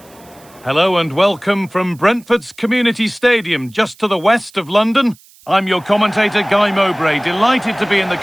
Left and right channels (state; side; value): noise; right; hiss, 27 dB below the sound